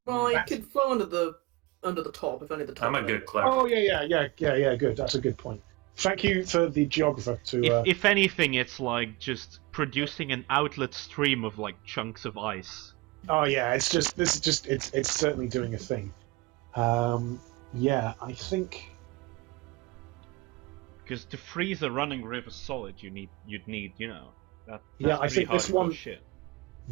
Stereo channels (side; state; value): left; quieter; 22.5 dB